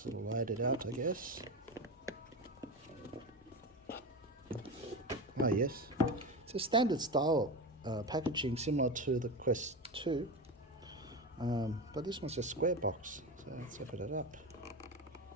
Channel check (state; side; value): normal; both; correlation 0.21